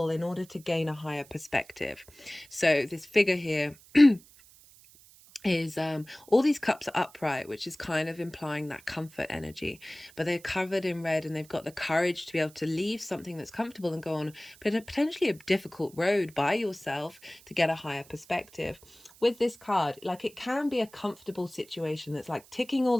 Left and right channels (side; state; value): right; noise; hiss, 24 dB below the sound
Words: in order to gain a higher perspective. So this figure here is all these cups are upright, which is kind of implying that comfort energy, but they're covered in red and they've got the courage to be able to leave something that's comfortable and go on potentially a difficult road by yourself to get a higher perspective. With this card, like, it can be a comfortable situation that's like ticking all